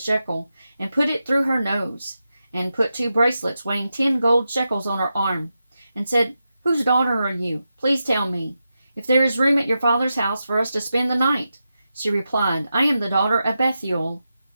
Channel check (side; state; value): both; inverted; correlation -0.89